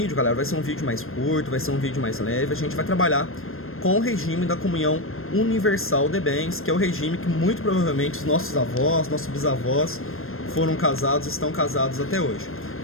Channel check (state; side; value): late; right; 0.61 ms